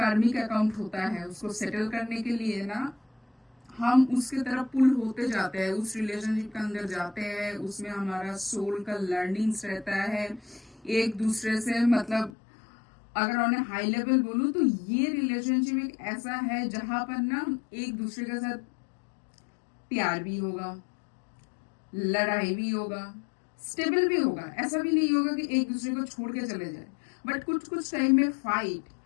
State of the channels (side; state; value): right; drops out; at 12.3 s